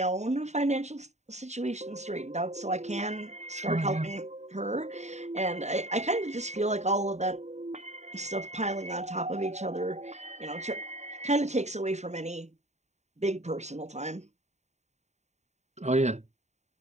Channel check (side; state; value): left; late; 0.33 ms